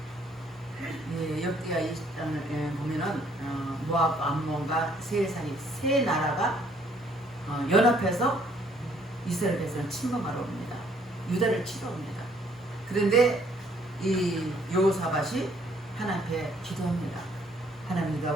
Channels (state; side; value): normal; both; correlation 0.64